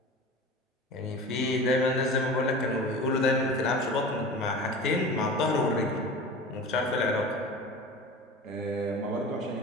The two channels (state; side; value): normal; both; correlation 0.35